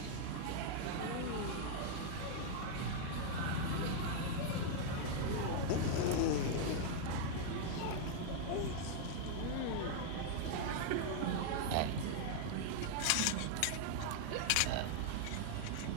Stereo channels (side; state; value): both; different; correlation 0.00